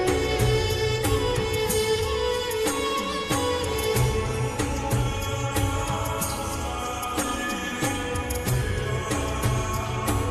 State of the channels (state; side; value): identical; both; correlation 1.00